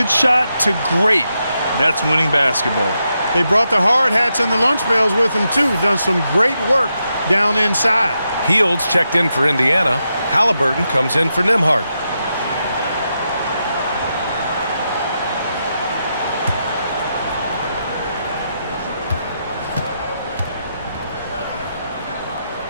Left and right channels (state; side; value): inverted; both; correlation -0.85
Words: shot to great. That's winning basketball. They brought the hard hats and the lunch pails with them, too. Done some great work down inside. Hields checked in for Indiana. Halliburton comes in for Nembhard.